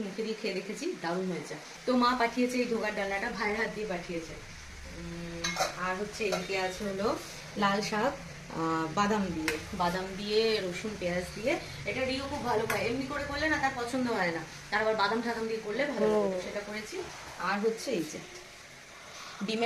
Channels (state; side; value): identical; both; correlation 1.00